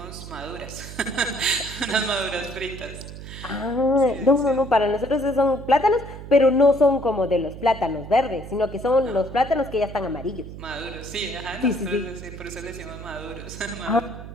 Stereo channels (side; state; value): right; noise; hum, 12 dB below the sound